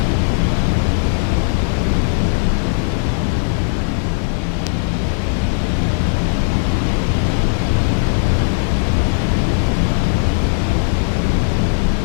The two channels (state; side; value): silent; right; digital silence